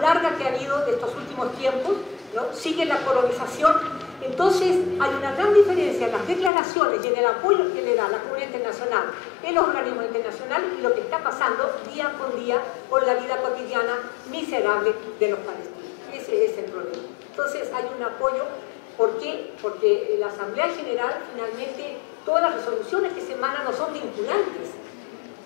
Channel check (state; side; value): drops out; right; at 6.5 s